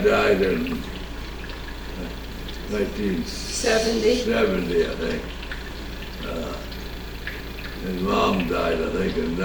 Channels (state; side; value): identical; both; correlation 1.00